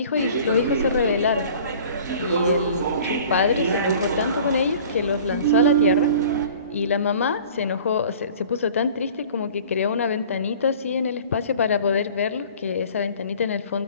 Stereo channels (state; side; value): inverted; both; correlation -0.46